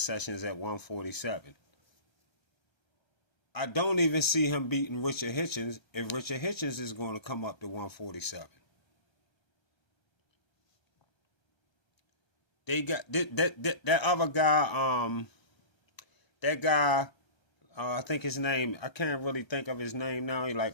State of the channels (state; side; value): late; right; 1.3 ms